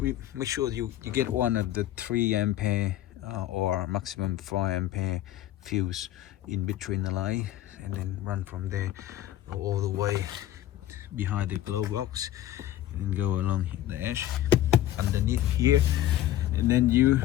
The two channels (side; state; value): right; quieter; 12.9 dB